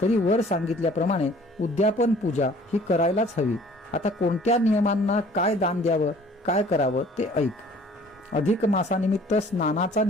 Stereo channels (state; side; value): normal; both; correlation 0.53